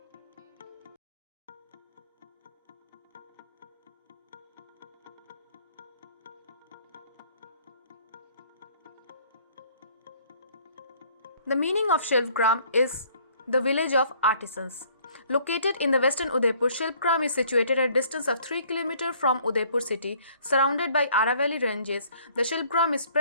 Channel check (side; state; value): both; inverted; correlation -0.59